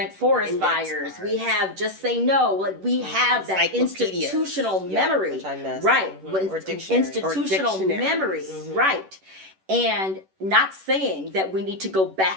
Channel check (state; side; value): late; left; 11 ms